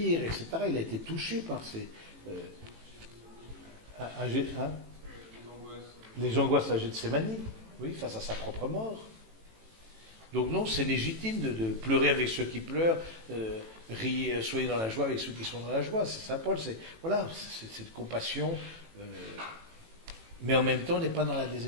etc. Il a été touché par ces... les angoisses à Gethsémani, oui, face à sa propre mort. Donc non, c'est légitime de pleurer avec ceux qui pleurent, riez, soyez dans la joie avec ceux qui sont dans la joie. C'est Saint Paul, c'est cette compassion, mais en même temps, on n'est pas dans la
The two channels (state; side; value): late; left; 18 ms